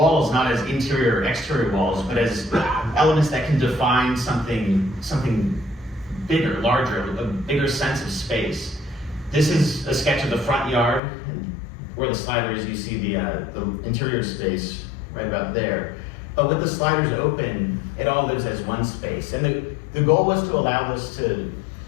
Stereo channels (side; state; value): right; drops out; at 11.0 s